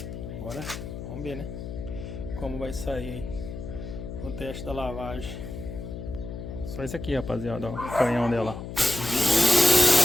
Agora, vamos ver, né? Como vai sair aí o teste da lavagem. Só isso aqui, rapaziada, ó. O canhão dela.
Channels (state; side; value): noise; left; hum, 8 dB below the sound